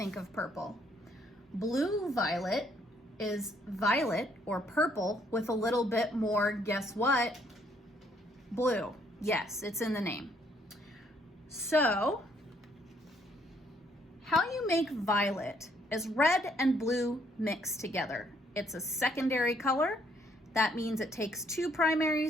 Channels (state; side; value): normal; both; correlation 0.68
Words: of purple. Blue violet is violet or purple with a little bit more, guess what? Blue. Yes, it's in the name. So, how you make violet is red and blue mixed together. It's a secondary color. That means it takes two